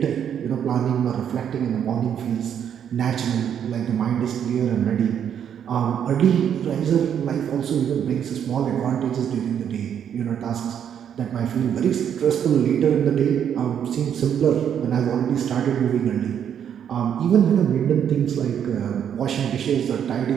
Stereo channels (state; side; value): quieter; left; 8.8 dB